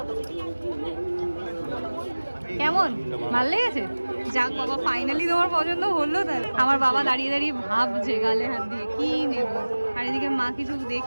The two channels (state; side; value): inverted; both; correlation -1.00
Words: কেমন? ভালো লেগেছে? যাক বাবা, ফাইনালি তোমার পছন্দ হলো। তাহলে আমার বাবা দাঁড়িয়ে দাঁড়িয়ে ভাবছে গালে হাত দিয়ে কি নেব, আর এদিকে মা কিছু